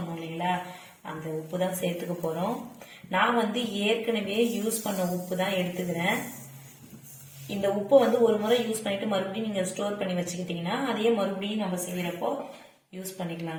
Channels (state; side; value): identical; both; correlation 1.00